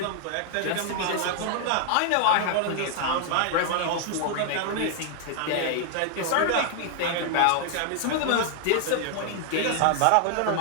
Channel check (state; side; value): different; both; correlation 0.00